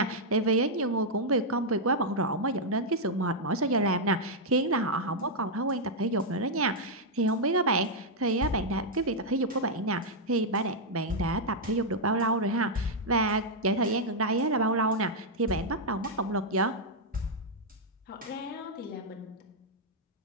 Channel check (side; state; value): both; normal; correlation -0.04